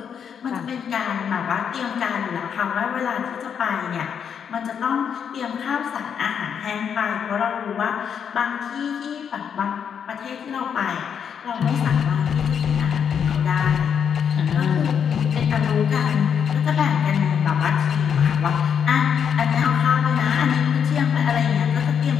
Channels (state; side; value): quieter; right; 7.6 dB